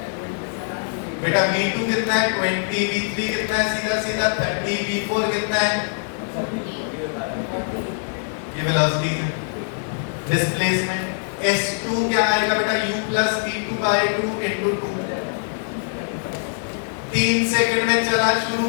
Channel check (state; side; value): silent; right; digital silence